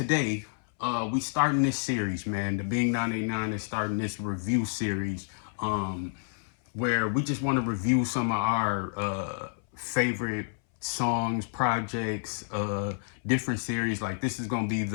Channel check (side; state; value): right; silent; 58 dB below the other